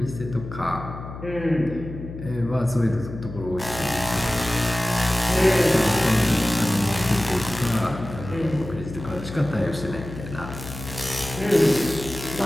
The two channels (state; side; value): noise; left; hum, 11 dB below the sound